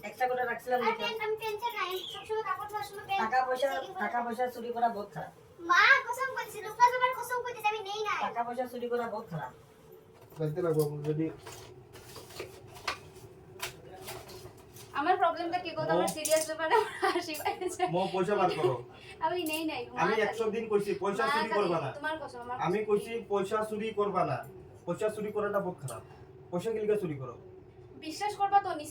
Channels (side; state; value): both; identical; correlation 1.00